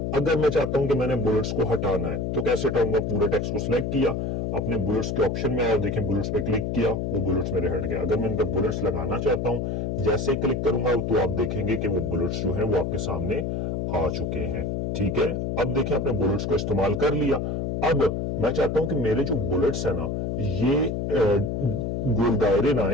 अगर मैं चाहता हूं कि मैंने बुलेट्स को हटाना है तो कैसे हटाऊंगा? पूरे टेक्स्ट को सिलेक्ट किया, अपने बुलेट्स के ऑप्शन में आया, देखें बुलेट्स पे क्लिक किया, वो बुलेट्स मेरे हट गए। अगर मैं इन पर बुलेट्स लगाना चाहता हूं, जैसे ही क्लिक करूंगा तो आप देखेंगे कि वो बुलेट्स जो है वो आपके सामने आ चुके हैं। ठीक है, अब देखिए आपने बुलेट्स को इस्तेमाल कर लिया। अब मैं चाहता हूं कि मेरे जो बुलेट्स है ना ये गोल दायरे ना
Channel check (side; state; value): left; noise; hum, 1 dB below the sound